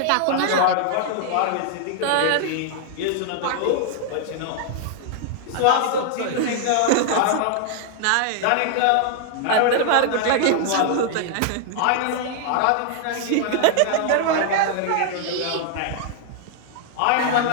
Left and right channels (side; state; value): both; different; correlation 0.00